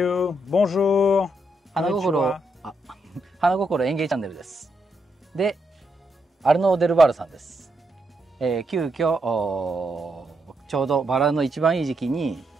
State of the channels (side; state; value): both; normal; correlation 0.80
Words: Bonjour. 花心、花心園芸チャンネルです。で、アルノー・デルバールさんです。急遽ちょうどバラの一番いい時期に、